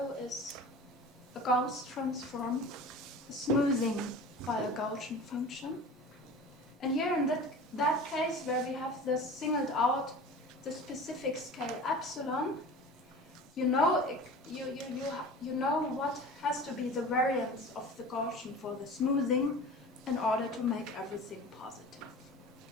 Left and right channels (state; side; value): normal; both; correlation 0.38